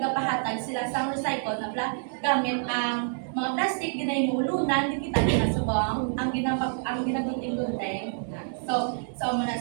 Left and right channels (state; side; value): silent; left; 57 dB below the other